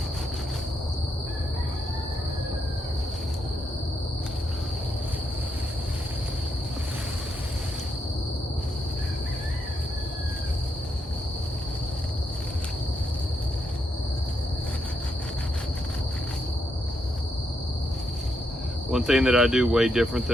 One thing that I do way different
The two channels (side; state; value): both; normal; correlation 0.81